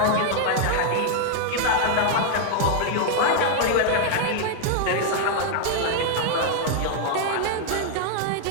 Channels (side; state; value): both; different; correlation 0.00